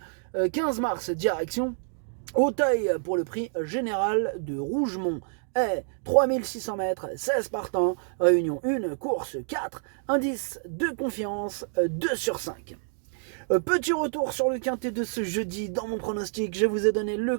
15 mars, direction Auteuil pour le prix général de Rougemont. Et 3600 mètres, 16 partants, réunion 1, course 4, indice de confiance 2 sur 5. Petit retour sur le quintet de ce jeudi. Dans mon pronostic, je vous ai donné le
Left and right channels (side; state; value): left; silent; digital silence